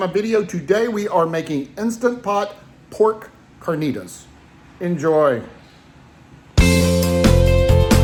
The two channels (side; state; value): both; identical; correlation 1.00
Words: video. Today we are making Instant Pot pork carnitas. Enjoy.